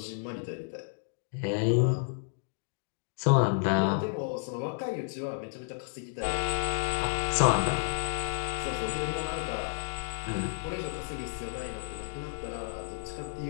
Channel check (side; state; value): right; silent; digital silence